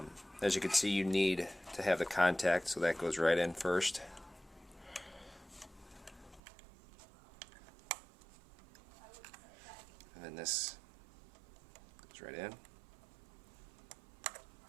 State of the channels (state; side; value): drops out; left; at 6.4 s